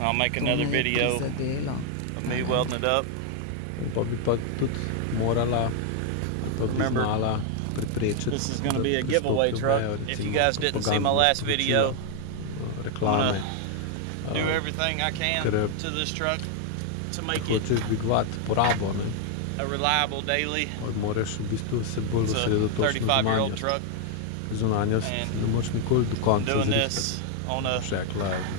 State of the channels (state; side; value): different; both; correlation 0.00